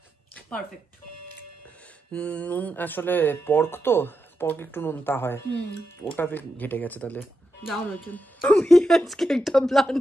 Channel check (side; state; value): both; normal; correlation 0.86